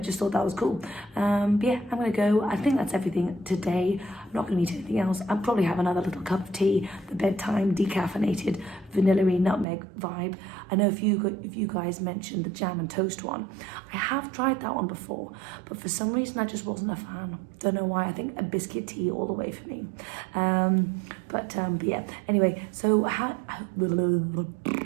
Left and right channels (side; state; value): left; drops out; at 9.7 s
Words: just thought that was cool. But yeah, I'm gonna go. I think that's everything today. I'm not gonna eat anything else. I'll probably have another little cup of tea, the bedtime decaffeinated vanilla-y nutmeg vibe. I know if you guys mentioned the jam and toast one, I have tried that one before, but for some reason I just wasn't a fan. Don't know why. I think a biscuit tea all the way for me. But yeah. Anyway, so I